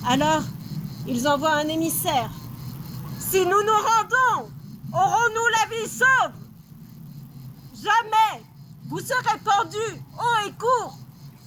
Alors, ils envoient un émissaire. Si nous nous rendons, aurons-nous la vie sauve? Jamais! Vous serez pendus, haut et court!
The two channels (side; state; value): both; identical; correlation 1.00